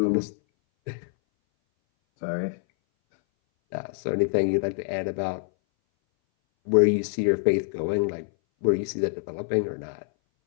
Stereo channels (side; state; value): right; silent; 59 dB below the other